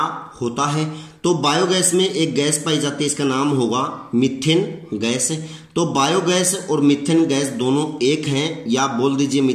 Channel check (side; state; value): both; identical; correlation 1.00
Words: होता है। तो बायोगैस में एक गैस पाई जाती है, इसका नाम होगा मीथेन गैस। तो बायोगैस और मीथेन गैस दोनों एक हैं, या बोल दीजिए